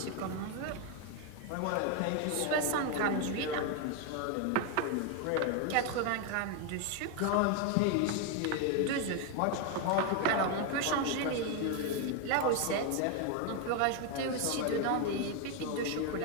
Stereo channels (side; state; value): both; different; correlation 0.01